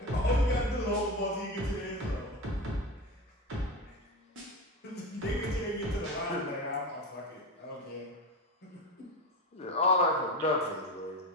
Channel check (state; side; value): normal; both; correlation 0.22